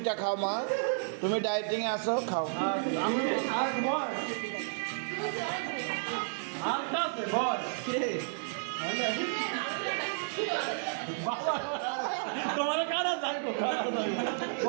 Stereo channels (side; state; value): left; silent; 56 dB below the other